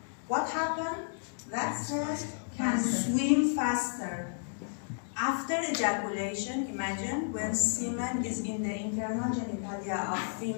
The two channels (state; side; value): silent; right; digital silence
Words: what happens? That cell can swim faster. After ejaculation, imagine when semen is in the internal genitalia of